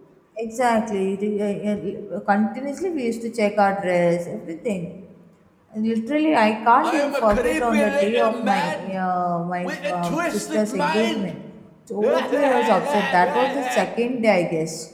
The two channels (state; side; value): identical; both; correlation 1.00